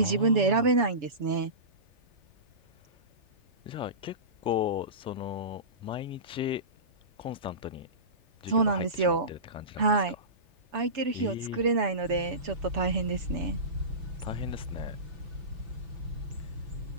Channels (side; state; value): left; late; 3.4 ms